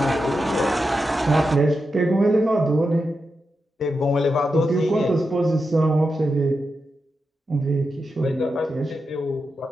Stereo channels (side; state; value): both; normal; correlation 0.88